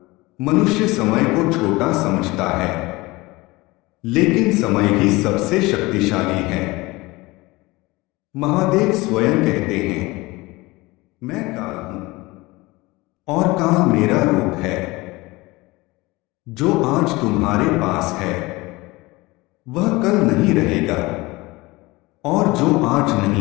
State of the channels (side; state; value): right; quieter; 21.8 dB